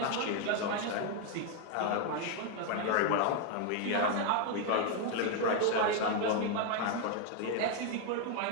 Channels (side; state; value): both; different; correlation 0.01